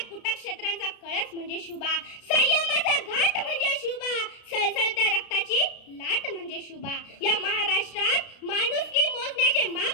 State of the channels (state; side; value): late; right; 33 ms